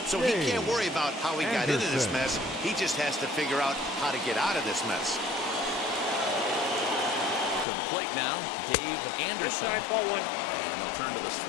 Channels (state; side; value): drops out; right; at 7.7 s